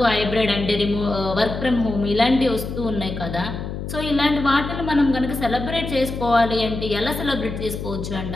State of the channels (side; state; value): left; noise; hum, 7 dB below the sound